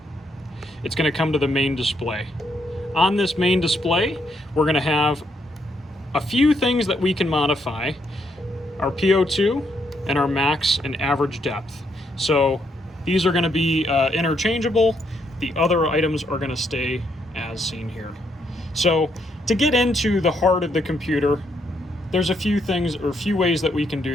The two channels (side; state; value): both; normal; correlation 0.75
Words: It's going to come to the main display. On this main display, we're going to have a few things that we can modify: our PO2 and our max and average depth. So these are going to be interchangeable. The other items are going to stay as seen here. So to get into the heart of the computer, there's a few things or a few ways that we can